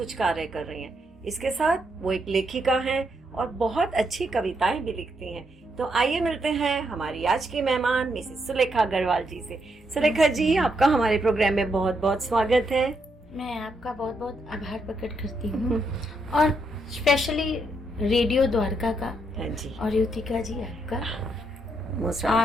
कार्य कर रही हैं। इसके साथ वो एक लेखिका हैं और बहुत अच्छी कविताएं भी लिखती हैं। तो आइए मिलते हैं हमारी आज की मेहमान मिसेस सुलेखा अग्रवाल जी से। सुलेखा जी, आपका हमारे प्रोग्राम में बहुत बहुत स्वागत है। मैं आपका बहुत बहुत आभार प्रकट करती हूँ और स्पेशली रेडियो द्वारका का जी और युतिका जी आपका।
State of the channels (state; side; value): normal; both; correlation 0.79